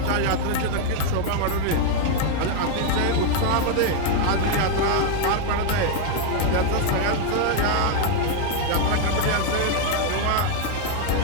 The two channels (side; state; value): both; different; correlation 0.00